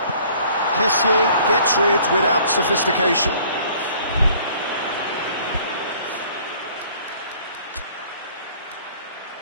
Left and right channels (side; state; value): both; inverted; correlation -0.55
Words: Kessié gets rid without sophistication.